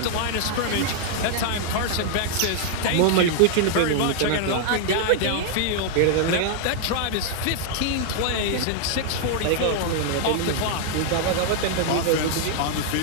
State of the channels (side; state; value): both; different; correlation 0.00